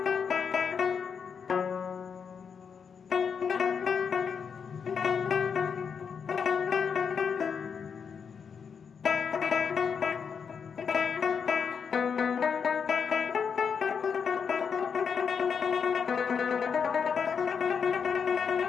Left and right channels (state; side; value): quieter; right; 6.5 dB